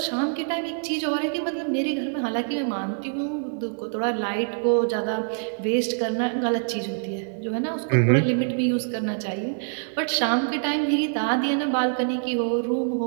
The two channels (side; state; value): left; silent; 62 dB below the other